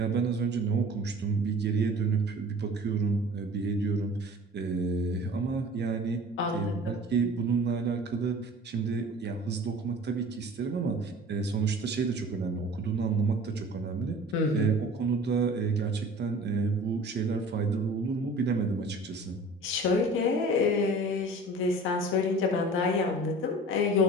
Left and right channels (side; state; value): both; normal; correlation 0.43